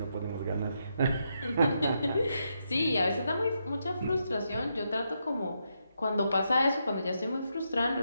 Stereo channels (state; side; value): inverted; both; correlation -0.81